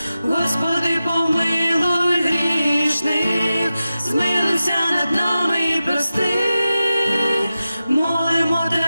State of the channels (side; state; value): both; inverted; correlation -0.93